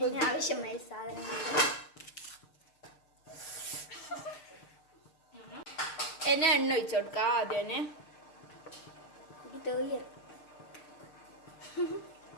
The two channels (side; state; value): right; late; 6.6 ms